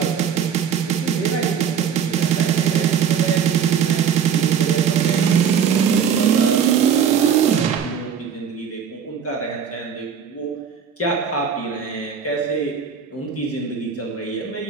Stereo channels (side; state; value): left; quieter; 7.6 dB